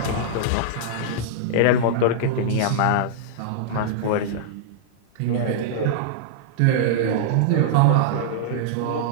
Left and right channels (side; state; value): both; different; correlation -0.02